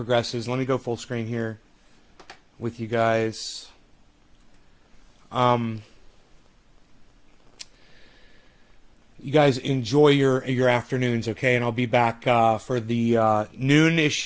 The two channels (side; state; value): both; identical; correlation 1.00